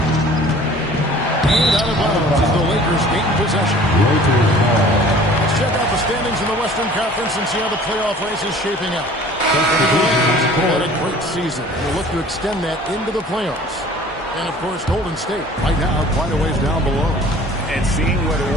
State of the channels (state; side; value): normal; both; correlation 0.48